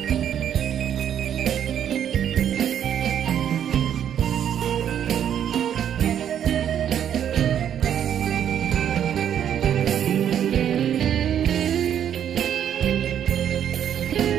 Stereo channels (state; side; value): quieter; left; 9.5 dB